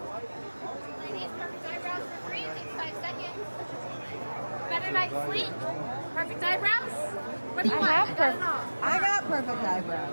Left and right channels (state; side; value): inverted; both; correlation -1.00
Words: Ladies, perfect eyebrows for free. Takes 5 seconds. Better night's sleep. Perfect eyebrows. What do you want? I got it all. I got perfect